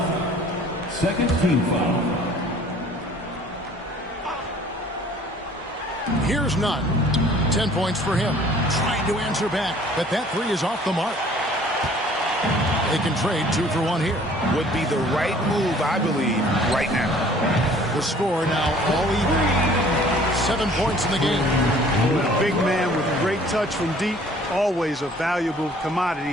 Second team foul. Here's Nunn. 10 points for him. Trying to answer back, but that three is off the mark. They can trade 2 for 1 here. Would be the right move, I believe, right now. The score now all even. 7 points in the game. A big man with great touch from deep, always a valuable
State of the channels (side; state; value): both; normal; correlation 0.53